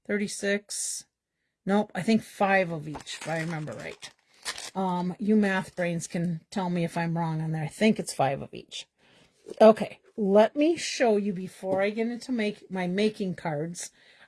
36. Nope, I think 5 of each, if I remember right. You math brains can tell me if I'm wrong on there. I think it's 5 of each. Okay, let me show you before I get into my making cards.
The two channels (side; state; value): both; identical; correlation 1.00